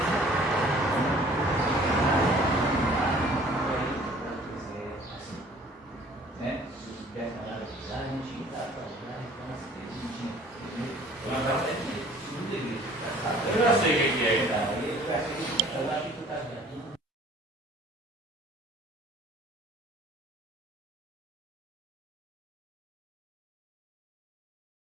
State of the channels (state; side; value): normal; both; correlation 0.52